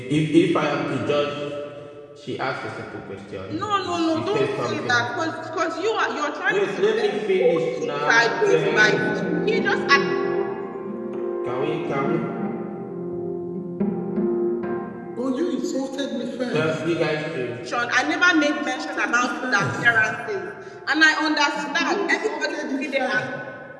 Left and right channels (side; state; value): both; identical; correlation 1.00